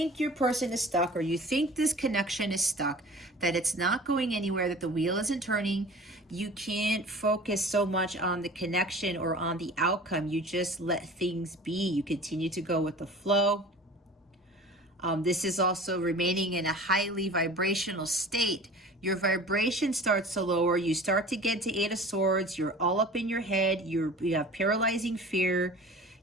your person is stuck, or you think this connection is stuck, that it's not going anywhere, that the wheel isn't turning. You can't focus so much on the connection or on the outcome. You just let things be. You continue to go with the flow. This is also remaining in a highly vibrational state. Your vibration starts to lower. You start to get to Eight of Swords. You're all up in your head. You have paralyzing fear.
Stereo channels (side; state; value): both; normal; correlation 0.42